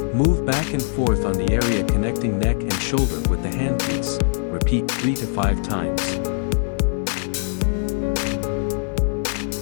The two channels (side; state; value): right; silent; 59 dB below the other